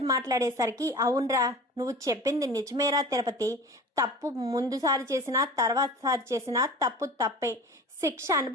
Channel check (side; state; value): both; normal; correlation 0.38